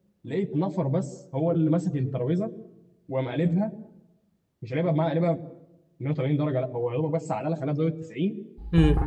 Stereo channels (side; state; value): both; identical; correlation 1.00